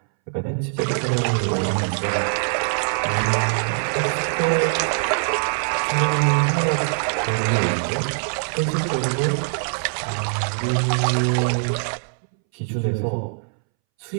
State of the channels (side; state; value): left; silent; 64 dB below the other